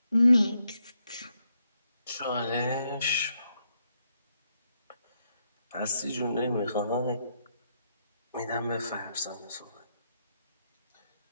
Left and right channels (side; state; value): both; inverted; correlation -0.79